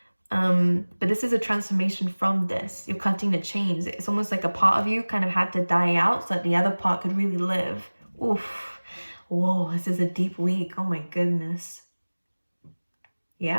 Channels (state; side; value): inverted; both; correlation -1.00